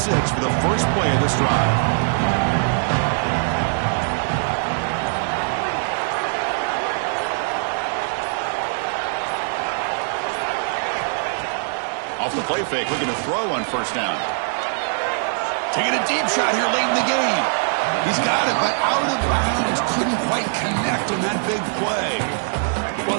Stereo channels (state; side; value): silent; left; digital silence